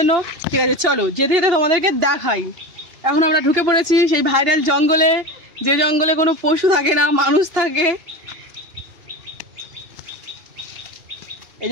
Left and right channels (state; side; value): late; left; 2.8 ms